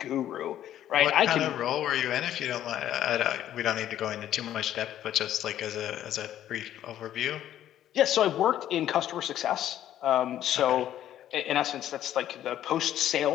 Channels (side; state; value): right; quieter; 11.7 dB